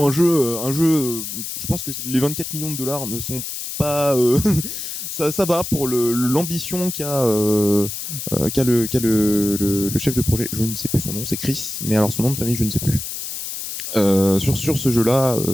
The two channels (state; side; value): noise; left; hiss, 6 dB below the sound